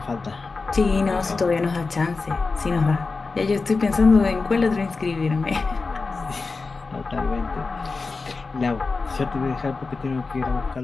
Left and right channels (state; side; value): quieter; right; 4.1 dB